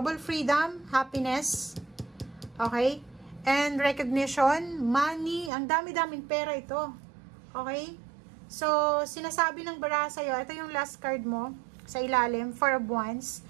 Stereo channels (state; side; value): drops out; left; at 5.5 s